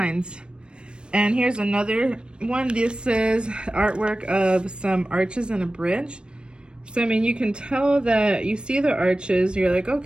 And here's another one. This is artwork of some arches and a bridge. So, I mean, you can tell that you see the arches, you're like,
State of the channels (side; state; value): left; late; 0.055 ms